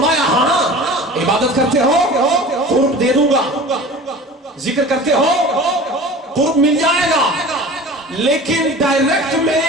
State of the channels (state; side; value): normal; both; correlation 0.39